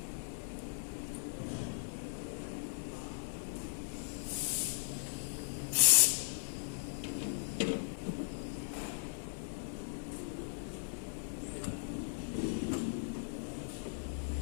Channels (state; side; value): silent; right; digital silence